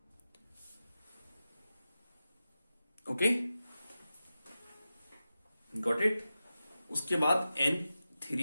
Okay, got it. उसके बाद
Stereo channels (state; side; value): inverted; both; correlation -0.93